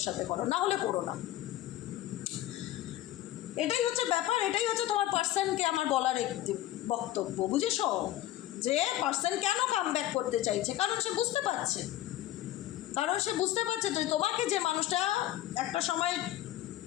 সাথে করো, না হলে করো না। এটাই হচ্ছে ব্যাপার, এটাই হচ্ছে তোমার পার্সনকে আমার বলার একটি বক্তব্য, বুঝেছ? যে পার্সন কেন কামব্যাক করতে চাইছে, কারণ সে বুঝতে পারছে, তো তোমাকে যে মানুষটা একটা সময়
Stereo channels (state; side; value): quieter; right; 14.4 dB